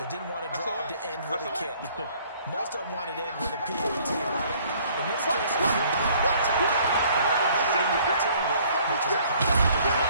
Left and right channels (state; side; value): inverted; both; correlation -0.58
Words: didn't want to drive to end with a kick. Most of them wanted to end with a PAT, right? In this case, if you're going to take it, way better than the alternative, which is a punt.